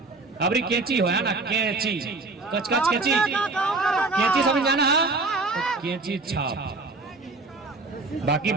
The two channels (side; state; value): left; quieter; 3.5 dB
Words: अबरी केची होया ना, केची कच कच केची, केची समझ जाना तो केची छाप। बाकी